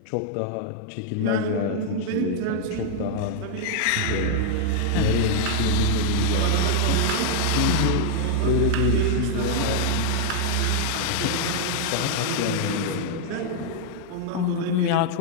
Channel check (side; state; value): both; different; correlation 0.00